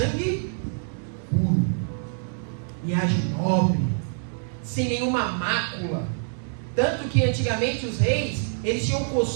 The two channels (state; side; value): silent; left; digital silence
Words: puro, linhagem nobre, sem nenhuma mácula. Tanto que antigamente os reis, eles tinham o